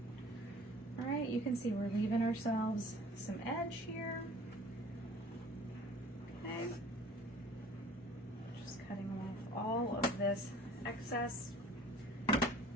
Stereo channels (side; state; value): both; normal; correlation 0.49